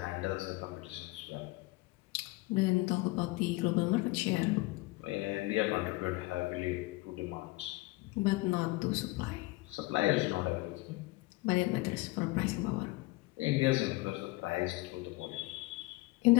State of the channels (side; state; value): right; quieter; 21.8 dB